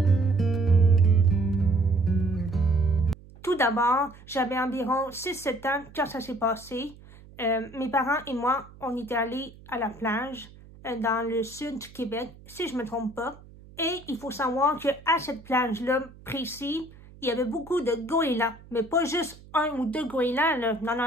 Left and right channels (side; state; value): right; noise; hum, 21 dB below the sound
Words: Tout d'abord, j'avais environ 6-7 ans quand ça s'est passé. Mes parents et moi, on était allés à la plage dans le sud du Québec, si je ne me trompe pas. Et il faut savoir qu'à cette plage-là précise, il y avait beaucoup de goélands. Mais pas juste un ou deux goélands, là.